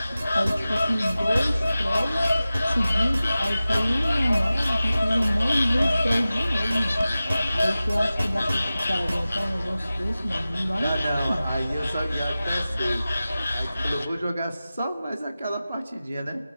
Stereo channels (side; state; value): both; inverted; correlation -0.96